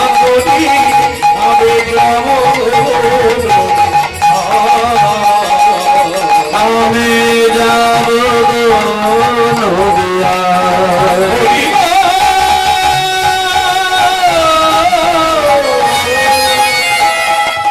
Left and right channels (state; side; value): identical; both; correlation 1.00